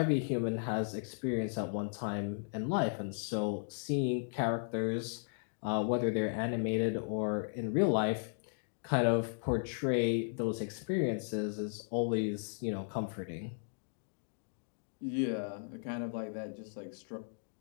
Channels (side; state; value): right; silent; digital silence